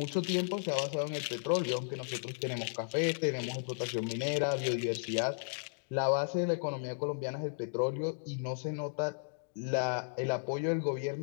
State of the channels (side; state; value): right; silent; digital silence